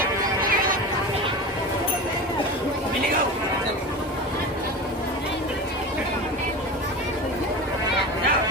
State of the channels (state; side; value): normal; both; correlation 0.28